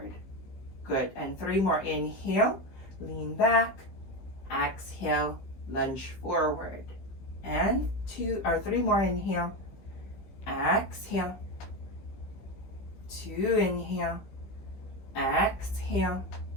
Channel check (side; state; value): right; late; 15 ms